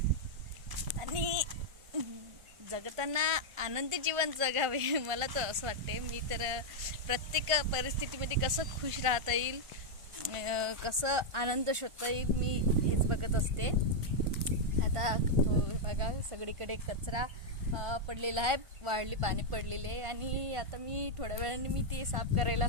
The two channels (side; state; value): left; late; 1.5 ms